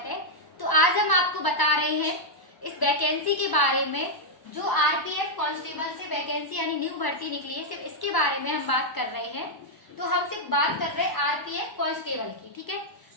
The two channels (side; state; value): right; late; 1.0 ms